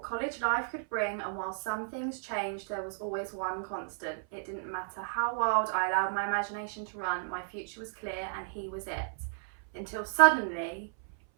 college life could bring, and while some things changed, there was always one constant. It didn't matter how wild I allowed my imagination to run, my future was clear and he was it. Until suddenly,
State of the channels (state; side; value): silent; left; 56 dB below the other